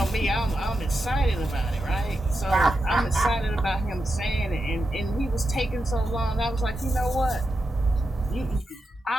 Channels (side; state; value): both; normal; correlation 0.88